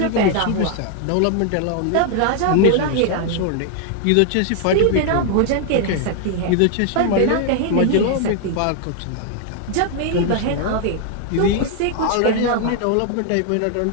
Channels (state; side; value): different; both; correlation 0.00